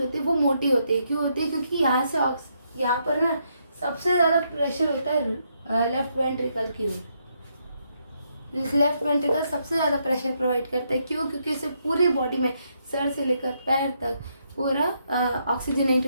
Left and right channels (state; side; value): inverted; both; correlation -0.77